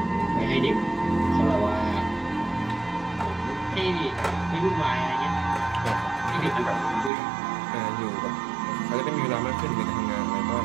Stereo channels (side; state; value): left; drops out; at 7.1 s